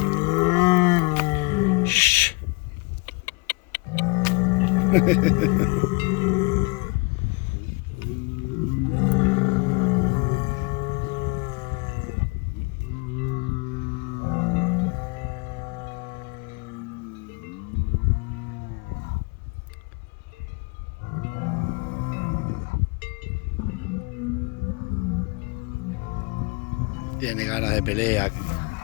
Shh. Tiene ganas de pelea.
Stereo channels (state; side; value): quieter; right; 28.4 dB